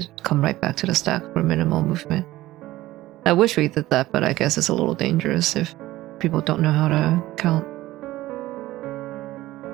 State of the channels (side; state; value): left; quieter; 16.7 dB